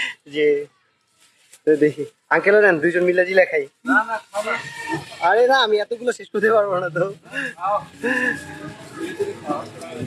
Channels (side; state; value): both; identical; correlation 1.00